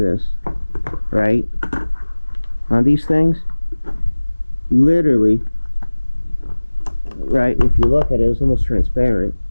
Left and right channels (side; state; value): both; inverted; correlation -1.00